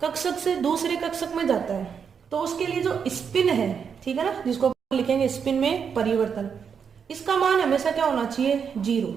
कक्षक से दूसरे कक्षक में जाता है, तो उसके लिए जो स्पिन है, ठीक है ना, जिसको लिखेंगे स्पिन में परिवर्तन, इसका मान हमेशा क्या होना चाहिए, 0।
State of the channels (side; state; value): left; quieter; 6.8 dB